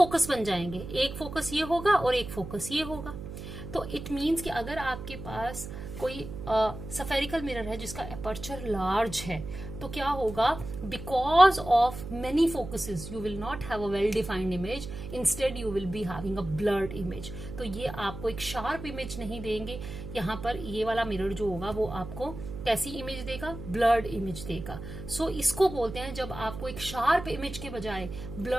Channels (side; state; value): right; noise; hum, 10 dB below the sound